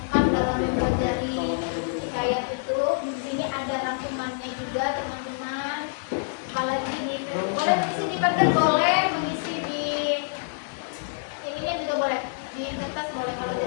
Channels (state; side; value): silent; right; digital silence